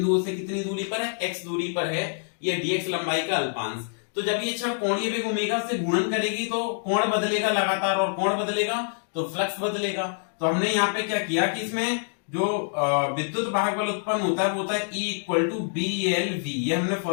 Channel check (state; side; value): silent; right; digital silence